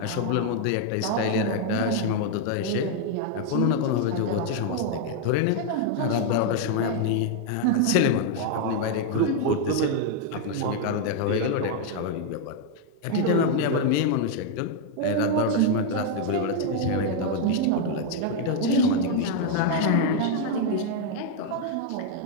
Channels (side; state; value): both; different; correlation 0.00